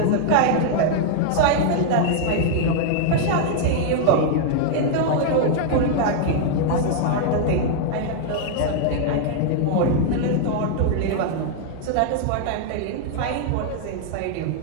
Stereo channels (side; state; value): both; different; correlation 0.00